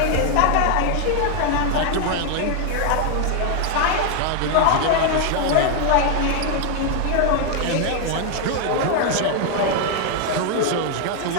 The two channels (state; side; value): different; both; correlation 0.00